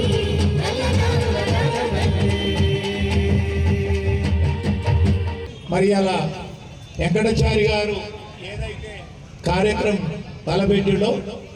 నల్ల నాగుల నగమల్లి. మరి అలా వెంకటాచారి గారు ఏదైతే కార్యక్రమం తలపెట్టిలో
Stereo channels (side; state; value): both; identical; correlation 1.00